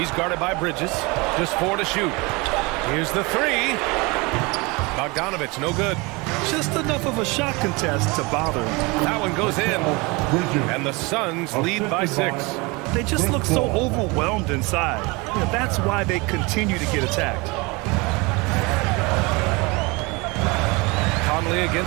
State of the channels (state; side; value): quieter; left; 26.1 dB